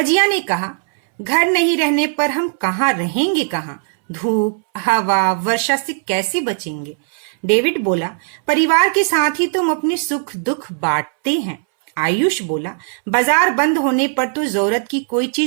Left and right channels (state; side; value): silent; left; 64 dB below the other